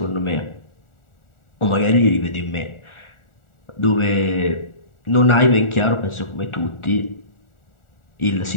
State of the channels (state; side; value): late; right; 1.4 ms